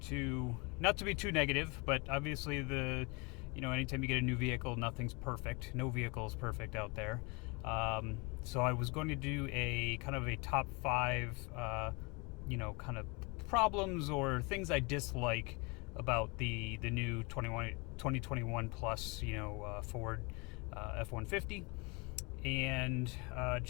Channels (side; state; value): right; quieter; 29.0 dB